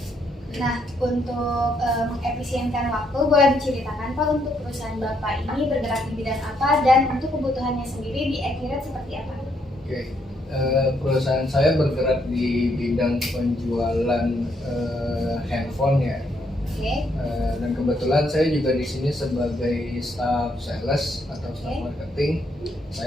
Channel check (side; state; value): both; normal; correlation 0.73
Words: Nah, untuk mengefisienkan waktu, boleh diceritakan Pak untuk perusahaan Bapak ini bergerak di bidang apa dan untuk kebutuhannya sendiri di Accurate seperti apa? Oke, perusahaan saya bergerak di bidang penjualan handphone ya. Oke. Dan kebetulan saya juga di sini sebagai staff sales atau staff marketing.